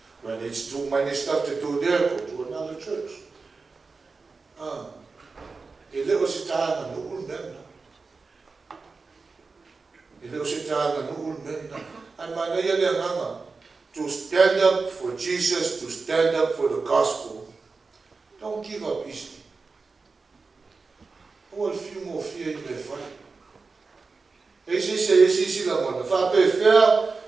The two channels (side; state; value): left; quieter; 4.3 dB